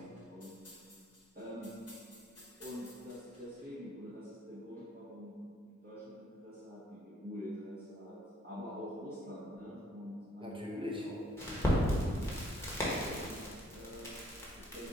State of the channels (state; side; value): normal; both; correlation 0.64